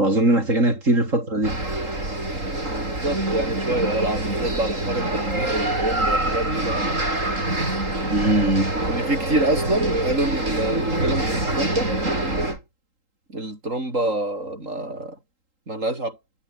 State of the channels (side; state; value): left; late; 3.8 ms